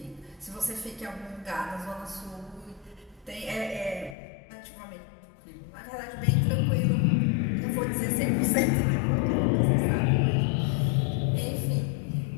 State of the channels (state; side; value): drops out; right; at 4.2 s